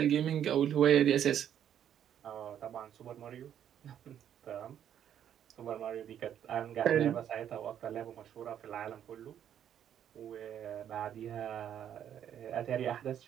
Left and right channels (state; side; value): quieter; left; 9.8 dB